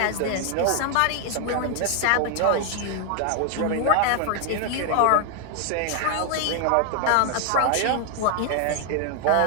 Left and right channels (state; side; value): different; both; correlation 0.00